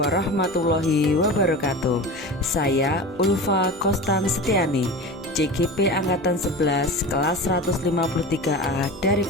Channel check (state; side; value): normal; both; correlation 0.30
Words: wabarakatuh. Saya Ulfa Kostan Setiani, CGP Angkatan 11 kelas 153A dari